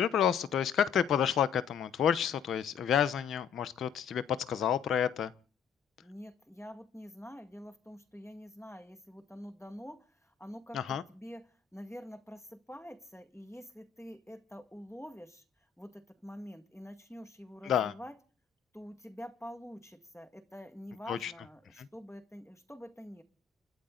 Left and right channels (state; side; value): quieter; right; 7.9 dB